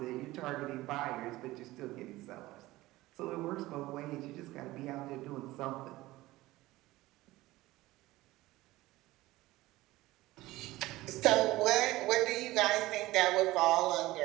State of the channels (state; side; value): quieter; left; 18.1 dB